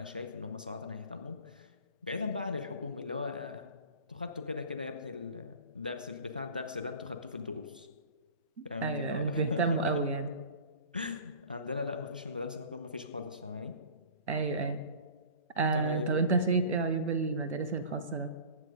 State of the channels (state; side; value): inverted; both; correlation -0.40